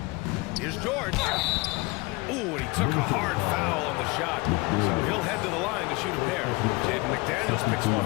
Here's George. Ooh, and he took a hard foul on the shot. So he'll head to the line to shoot a pair. Jaden McDaniels picks one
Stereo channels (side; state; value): right; quieter; 25.1 dB